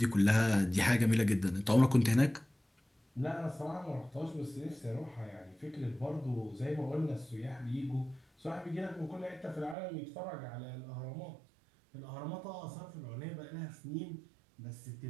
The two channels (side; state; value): left; drops out; at 9.8 s